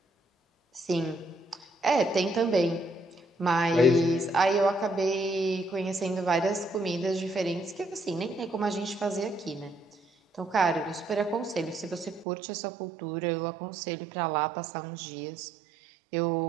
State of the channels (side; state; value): left; drops out; at 12.2 s